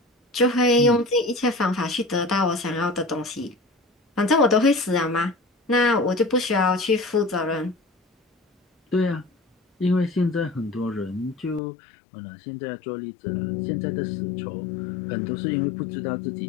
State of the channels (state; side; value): drops out; right; at 11.6 s